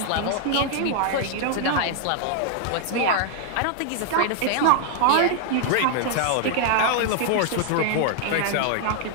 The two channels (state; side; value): different; both; correlation 0.00